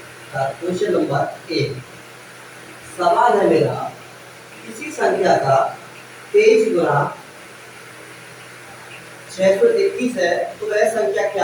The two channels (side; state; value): both; identical; correlation 1.00